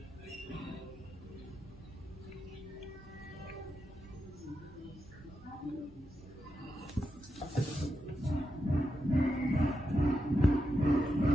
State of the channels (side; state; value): both; normal; correlation 0.87